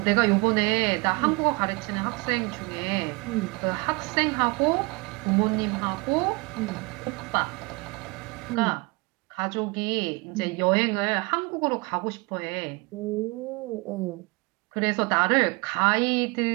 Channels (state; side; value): quieter; left; 27.5 dB